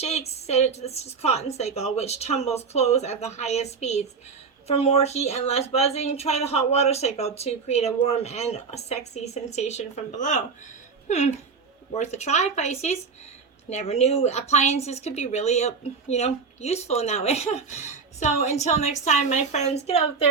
set it to the cotton cycle, which tumbles close at the highest speeds. For more heat and less buzzing, try the hot water cycle to create a warm and a sexy sensation from below. Worth a try, Pisces. Never knew appliances could be really, useful in that way. So until next time, my friends, get out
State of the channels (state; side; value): quieter; left; 5.2 dB